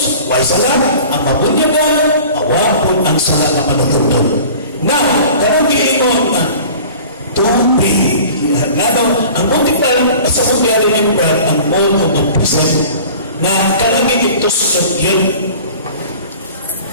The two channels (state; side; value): inverted; both; correlation -0.43